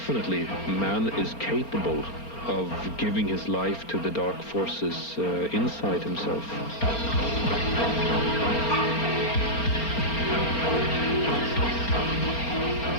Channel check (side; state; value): right; late; 4.3 ms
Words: man is capable of giving his life to the dark forces inside himself.